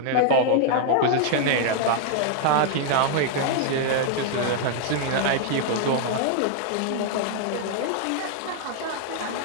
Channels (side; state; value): both; different; correlation -0.01